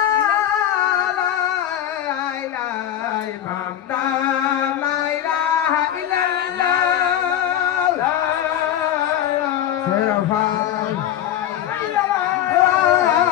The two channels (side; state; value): right; quieter; 11.1 dB